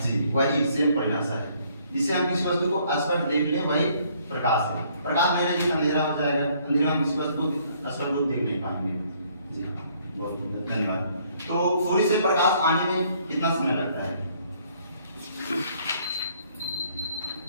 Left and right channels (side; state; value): both; inverted; correlation -0.64